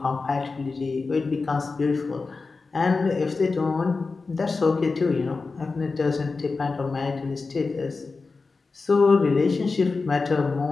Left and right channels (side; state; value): right; quieter; 4.1 dB